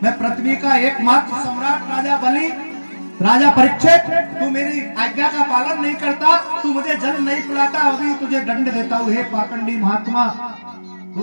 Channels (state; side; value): inverted; both; correlation -1.00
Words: मैं पृथ्वी का एकमात्र सम्राट राजा बलि, राजा परीक्षित, तू मेरी आज्ञा का पालन नहीं करता, तू मुझे जल नहीं पिलाता, अभी तुझे दंड देता हूं। हे पाखंडी महात्मा,